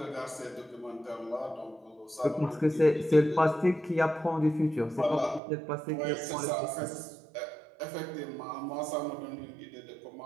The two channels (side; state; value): left; drops out; at 5.4 s